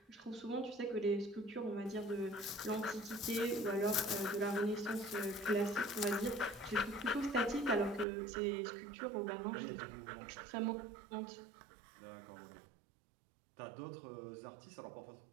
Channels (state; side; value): drops out; left; at 8.1 s